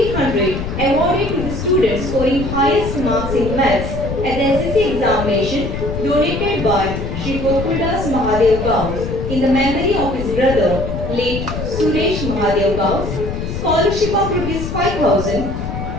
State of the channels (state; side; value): noise; left; rumble, 5 dB below the sound